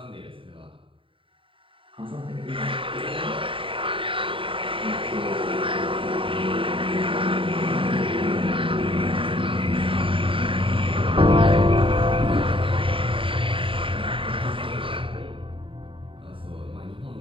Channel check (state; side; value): late; left; 0.25 ms